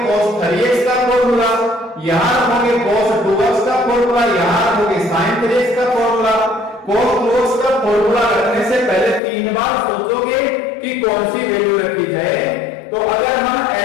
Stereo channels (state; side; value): drops out; right; at 9.2 s